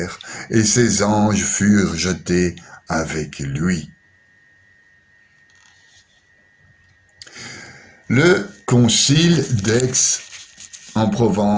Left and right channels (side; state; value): both; identical; correlation 1.00